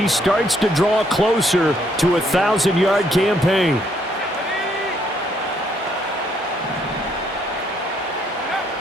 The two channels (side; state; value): both; normal; correlation 0.70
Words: starts to draw closer to a 1,000-yard campaign.